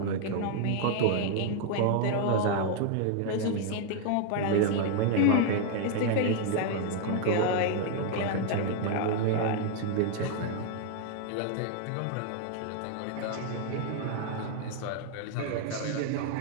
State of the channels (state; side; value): different; both; correlation 0.00